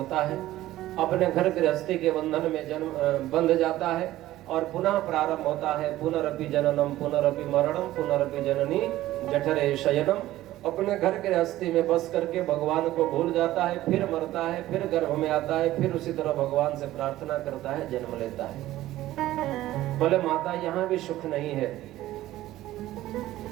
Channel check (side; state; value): left; quieter; 15.2 dB